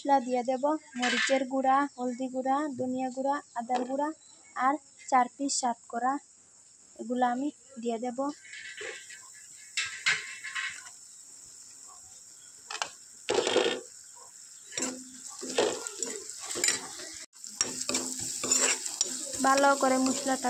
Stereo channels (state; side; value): identical; both; correlation 1.00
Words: দিয়ে দেব। মরিচের গুঁড়া, হলদি গুঁড়া, ধনিয়া গুঁড়া, আদার গুঁড়া আর 4 পিস সাত করা, এগুলো আমি দিয়ে দেব। ভালো করে মশলাটা